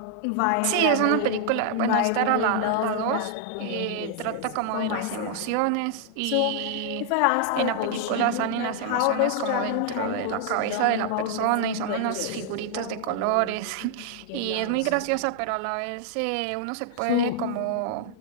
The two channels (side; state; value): both; different; correlation -0.01